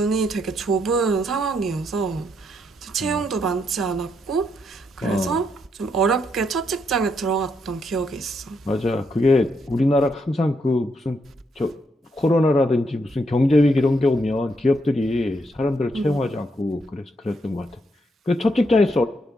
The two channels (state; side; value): normal; both; correlation 0.77